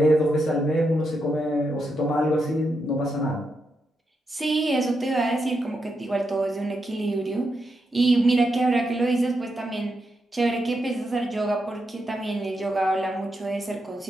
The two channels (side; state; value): both; normal; correlation 0.84